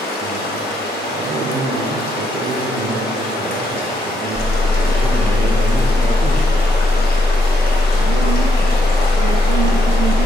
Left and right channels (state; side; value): normal; both; correlation 0.76